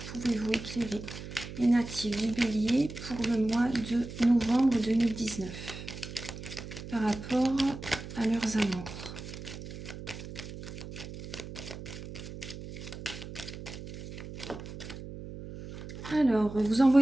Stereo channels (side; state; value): right; noise; hum, 11 dB below the sound